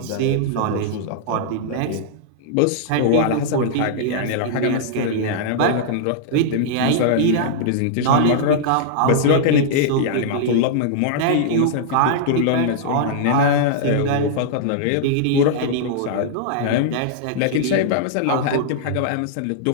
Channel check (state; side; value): different; both; correlation -0.01